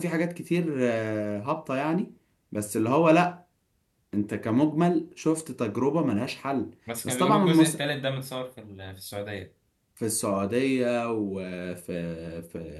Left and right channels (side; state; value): both; identical; correlation 1.00